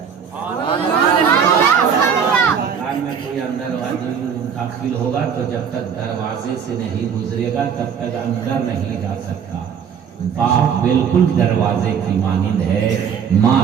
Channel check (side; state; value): left; quieter; 7.3 dB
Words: میں کوئی اندر داخل ہوگا تو جب تک دروازے سے نہیں گزرے گا تب تک اندر نہیں جا سکتا. باپ بالکل دروازے کی مانند ہے، ماں